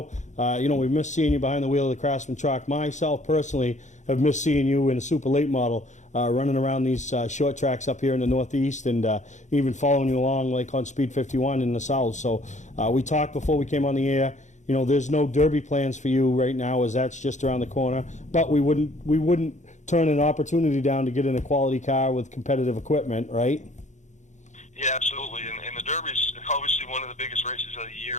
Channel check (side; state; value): right; late; 0.35 ms